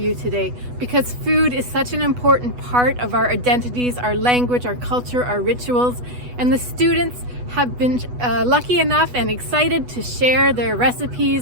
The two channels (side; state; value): left; late; 8.1 ms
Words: today because food is such an important part of our identities, our language, our culture, our rituals, and the students have been lucky enough and excited to share their